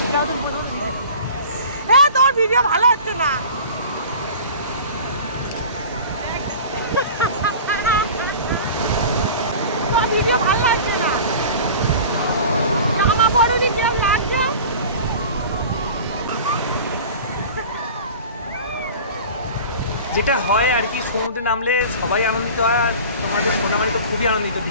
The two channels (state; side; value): inverted; both; correlation -0.39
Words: তোর ভিডিও ভালো হচ্ছে না। ভিডিও ভালো লাগছে না, জামা পরনি কেমন লাগছে। যেটা হয় আর কি, সমুদ্রে নামলে সবাই আনন্দিত হয়। আর তোমাদের সোনামাই তো খুবই আনন্দিত,